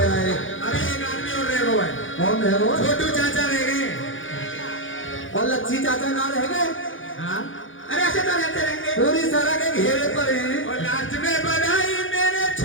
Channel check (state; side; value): late; right; 0.57 ms